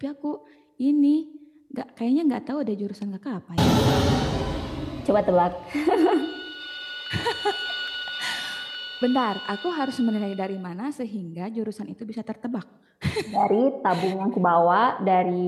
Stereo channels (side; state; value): both; identical; correlation 1.00